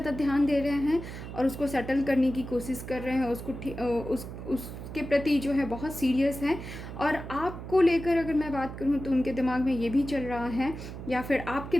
ध्यान दे रहे हैं और उसको सेटल करने की कोशिश कर रहे हैं, उसके प्रति जो है बहुत सीरियस हैं। और आपको लेकर अगर मैं बात करूँ तो उनके दिमाग में ये भी चल रहा है, या फिर आपके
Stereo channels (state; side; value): noise; right; hum, 10 dB below the sound